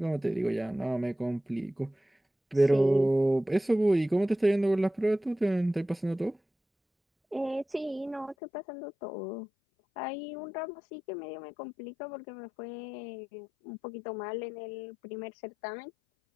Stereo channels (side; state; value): right; drops out; at 8.3 s